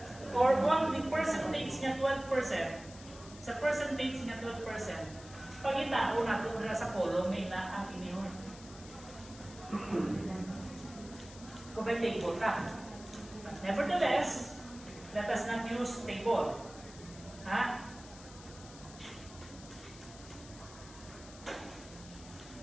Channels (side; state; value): left; noise; hiss, 18 dB below the sound